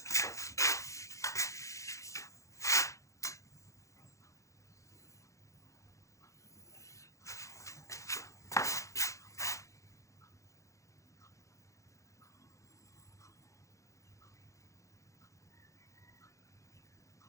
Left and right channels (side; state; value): right; late; 0.15 ms